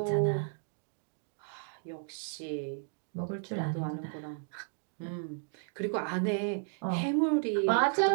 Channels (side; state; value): left; silent; digital silence